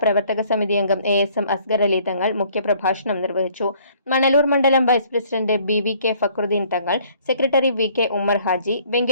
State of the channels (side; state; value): both; inverted; correlation -0.59